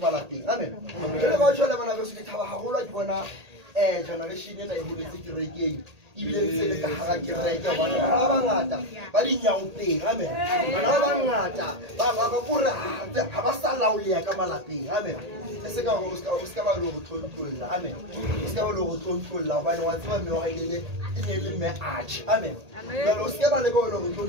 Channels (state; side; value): late; left; 1.8 ms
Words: lapeng amen jalo ka tshola bana beso ke thaba haholo ke bona generation ena e holetse kerekeng ibile ntse le ka hara kereke bona ba bangata ba dinyaopeng amen bana ba bangata ba kore ha ba sa laoleya ka malapeng amen e se ka go ska ba lo go tlontolla amen o ska ba lo go tlontolla hobane wa tseba mme wa ile e ne le mme arch amen jalo o ska ba le go lo go